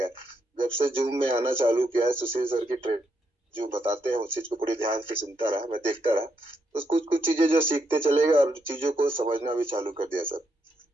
जब से जूम में आना चालू किया है, सुशील सर की ट्रेड जो बताते हैं उस चीज को पूरी ध्यान से सुनता रहा, मैं देखता रहा, तो कुछ चीजें जो सीखते चले गए और चीजों को समझना भी चालू कर दिया सर।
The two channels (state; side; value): normal; both; correlation 0.79